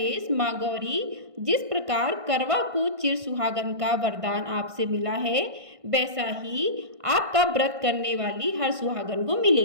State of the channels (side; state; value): left; late; 1.5 ms